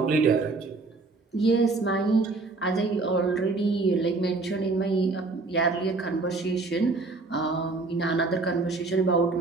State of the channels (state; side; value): quieter; left; 3.6 dB